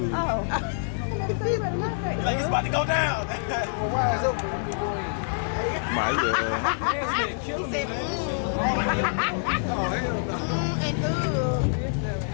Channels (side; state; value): right; silent; 61 dB below the other